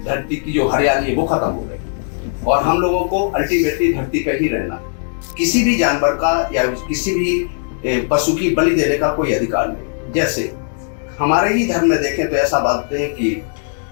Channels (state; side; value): silent; right; digital silence